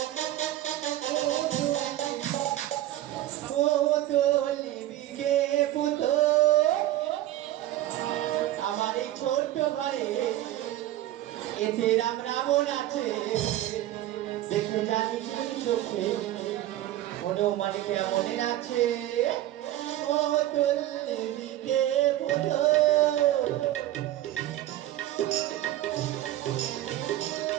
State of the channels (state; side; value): quieter; left; 14.1 dB